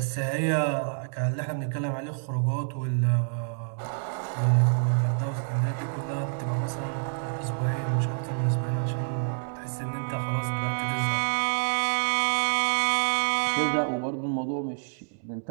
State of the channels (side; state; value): left; silent; digital silence